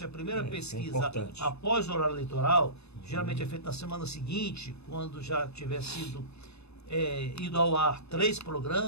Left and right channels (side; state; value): right; late; 0.80 ms